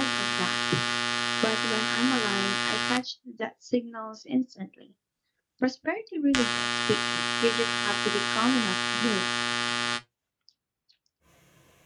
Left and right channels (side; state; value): both; identical; correlation 1.00